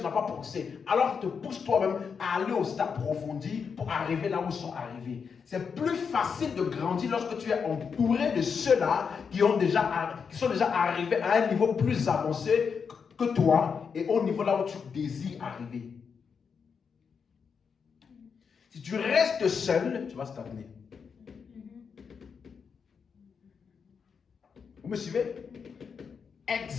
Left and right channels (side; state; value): right; quieter; 6.1 dB